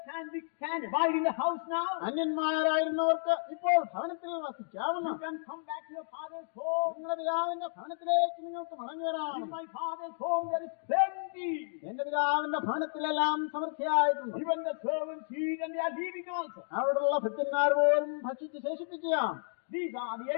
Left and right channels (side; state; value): right; silent; digital silence